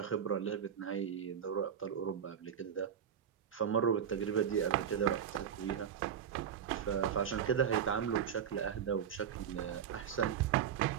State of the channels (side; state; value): left; quieter; 8.5 dB